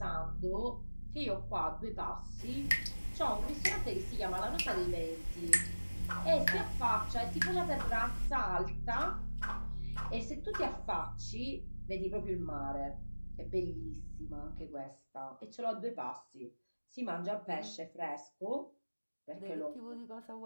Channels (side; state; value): both; inverted; correlation -1.00